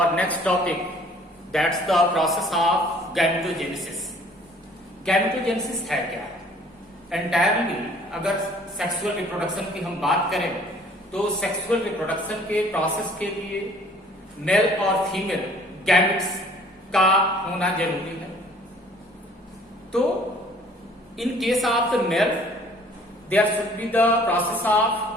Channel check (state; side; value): normal; both; correlation 0.55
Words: next topic, that's the process of gametogenesis. Gametogenesis है क्या? Entirely अगर sexual reproduction की हम बात करें तो सेक्सुअल रिप्रोडक्शन के प्रोसेस के लिए मेल और फीमेल गैमेट्स का होना जरूरी है। तो in case of the male there should be the process of